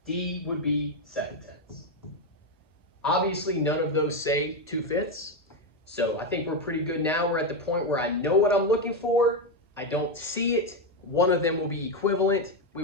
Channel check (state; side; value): normal; both; correlation 0.08